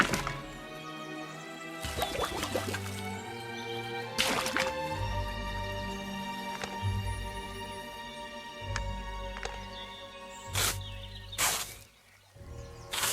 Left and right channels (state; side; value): identical; both; correlation 1.00